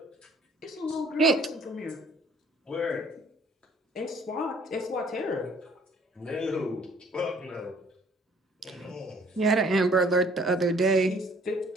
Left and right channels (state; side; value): normal; both; correlation 0.57